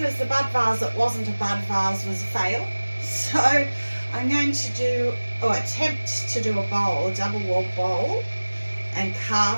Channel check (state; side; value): inverted; both; correlation -1.00